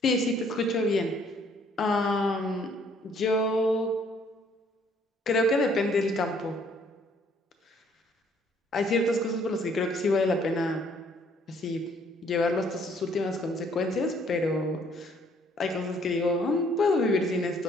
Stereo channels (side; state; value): both; normal; correlation 0.63